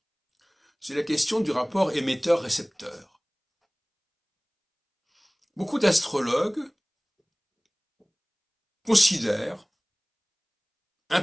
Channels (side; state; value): both; identical; correlation 1.00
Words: c'est la question du rapport émetteur-récepteur. Beaucoup d'astrologues considèrent,